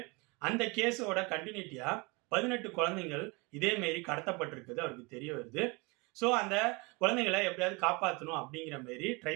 அந்த கேஸோட கண்டினியூட்டியா 18 குழந்தைகள் இதே மாரி கடத்தப்பட்டிருக்குது அவருக்கு தெரிய வருது. ஸோ அந்த குழந்தைங்களை எப்படியாவது காப்பாற்றணும் அப்படிங்கிற மாரி ட்ரை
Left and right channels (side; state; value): left; quieter; 27.4 dB